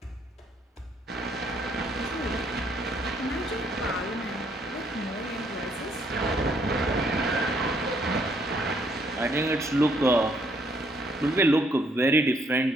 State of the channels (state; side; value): normal; both; correlation 0.68